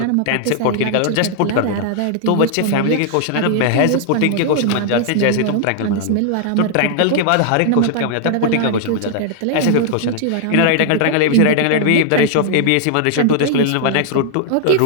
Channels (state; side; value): different; both; correlation 0.00